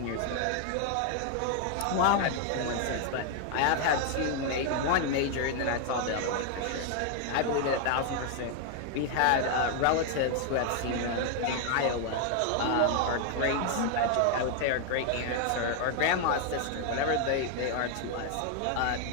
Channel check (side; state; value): both; different; correlation 0.00